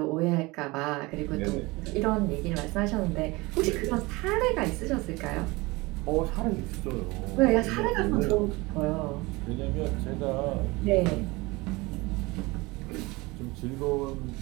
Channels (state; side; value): quieter; left; 23.2 dB